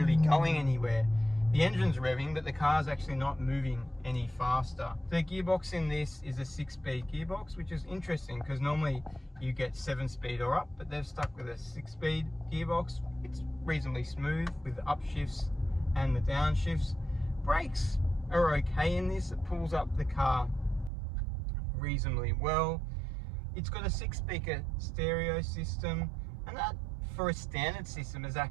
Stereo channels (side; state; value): left; drops out; at 20.9 s